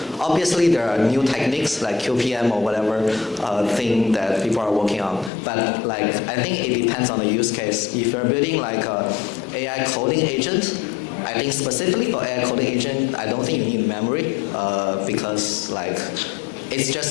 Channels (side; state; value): right; drops out; at 5.3 s